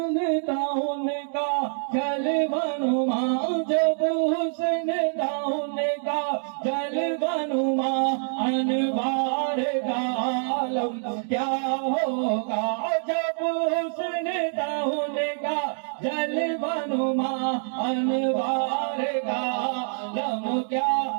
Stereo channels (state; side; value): silent; left; digital silence